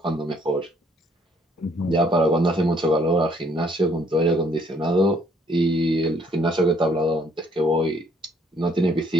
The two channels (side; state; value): both; normal; correlation 0.65